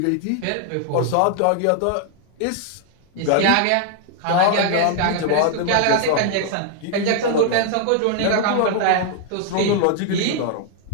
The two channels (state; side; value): different; both; correlation 0.00